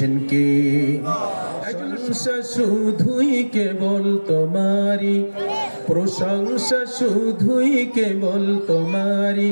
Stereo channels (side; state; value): both; inverted; correlation -1.00